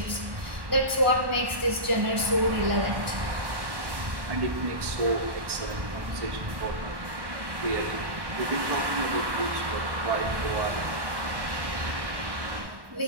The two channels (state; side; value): late; left; 1.1 ms